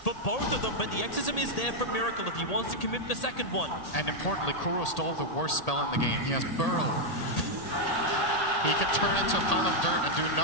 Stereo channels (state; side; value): late; right; 1.8 ms